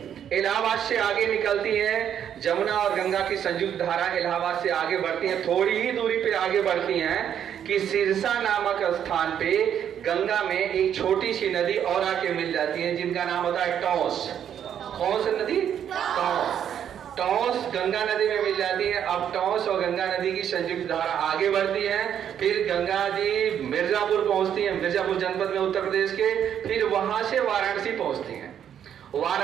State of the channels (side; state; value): left; quieter; 9.2 dB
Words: इलाहाबाद से आगे निकलती है, जमुना और गंगा की संयुक्त धारा इलाहाबाद से आगे बढ़ती है। थोड़ी ही दूरी पे आगे बढ़ती हैं कि सिरसा नामक स्थान पे गंगा में एक छोटी सी नदी और आके मिल जाती है, जिनका नाम होता है टॉस। कौन सी नदी? टॉस। टॉस गंगा नदी में मिल जाती है। अब टॉस और गंगा नदी की संयुक्त धारा आगे बढ़ती है, फिर गंगा जी मिर्जापुर पहुंचती है, मिर्जापुर जनपद में उत्तर प्रदेश के। फिर वहां से वाराणसी पहुंचती है।